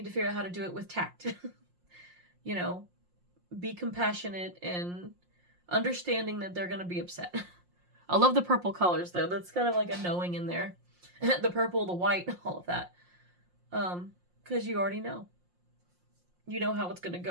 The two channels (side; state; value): left; late; 5.6 ms